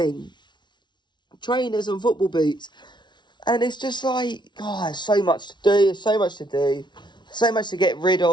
Trainers and football boots. And it's just like, oh, there's so much to do. So much to get rid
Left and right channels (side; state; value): right; late; 0.22 ms